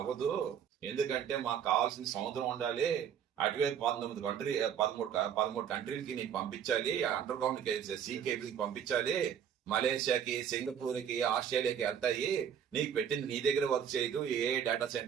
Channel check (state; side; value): quieter; left; 8.5 dB